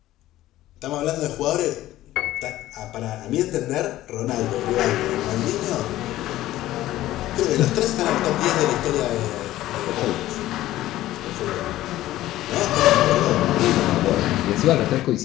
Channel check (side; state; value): right; quieter; 15.0 dB